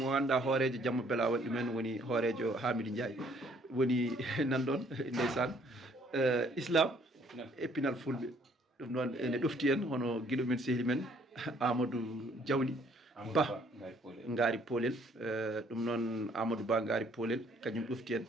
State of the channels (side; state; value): both; normal; correlation 0.63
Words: ngannduɗa hoorejo Jamma Bela waɗi ɗumen woni hoorejo Hamidou Ndiaye woni nanɗon ndeysan islam e pinal fulɓe. ɗum noon ene ɗofti en hono guiɗo men sehli men Amadou Diawli Ba Ngari Polel. ɗum noon Amadou Ba Ngari Polel kañum ɗofti en